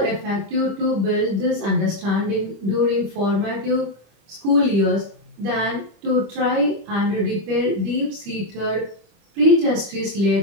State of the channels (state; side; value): late; left; 25 ms